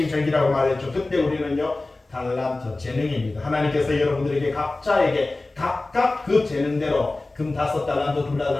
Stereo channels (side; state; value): right; quieter; 3.1 dB